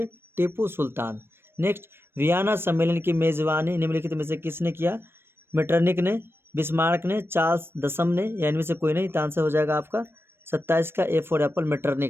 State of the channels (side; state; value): left; late; 0.11 ms